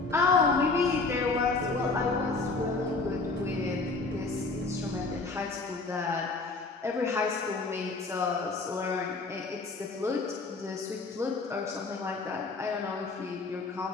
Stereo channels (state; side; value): quieter; right; 3.8 dB